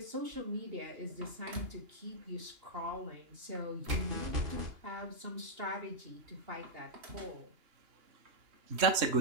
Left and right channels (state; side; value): late; left; 2.9 ms